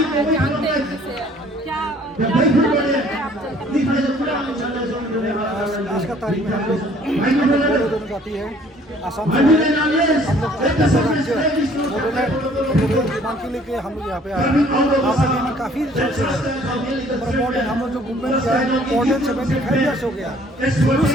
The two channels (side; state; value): both; normal; correlation 0.57